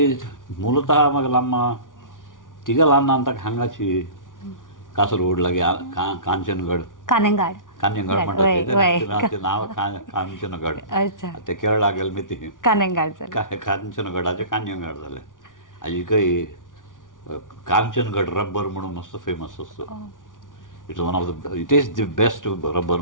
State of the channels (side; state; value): right; late; 0.88 ms